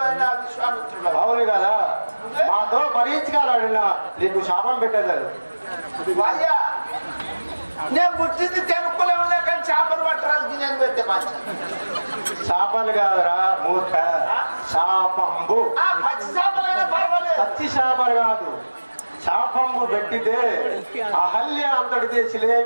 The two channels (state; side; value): inverted; both; correlation -1.00